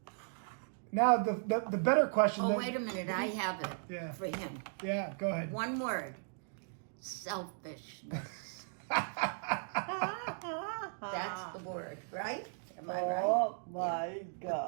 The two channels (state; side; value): silent; left; digital silence